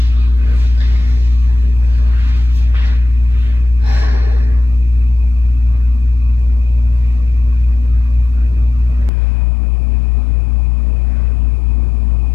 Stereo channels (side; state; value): right; drops out; at 9.1 s